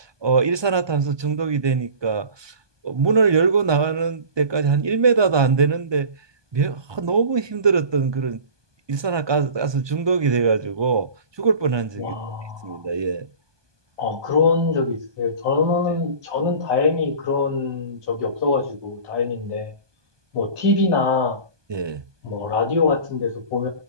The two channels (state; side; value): late; left; 1.2 ms